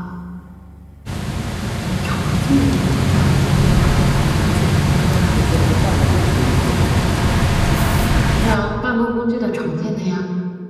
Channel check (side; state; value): both; identical; correlation 1.00